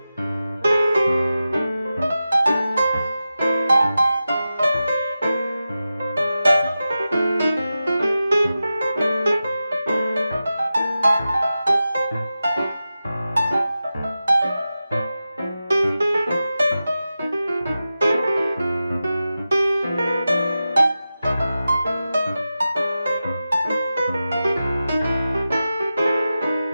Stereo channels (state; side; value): inverted; both; correlation -0.93